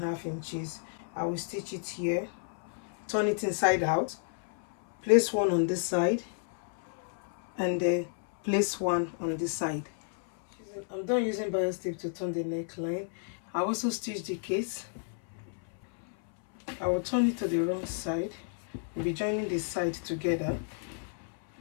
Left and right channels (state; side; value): silent; right; 57 dB below the other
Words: inches. I will stitch it here, turn it inside out, place one on this side, and then place one on this side. I'm done using bias tape to turn the neckline. I also stitch the case. I will turn it to the wrong side. We'll be joining the side together.